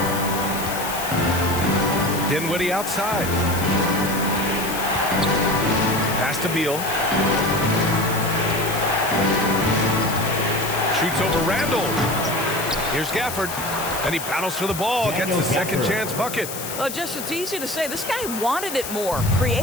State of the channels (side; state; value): left; noise; hiss, 8 dB below the sound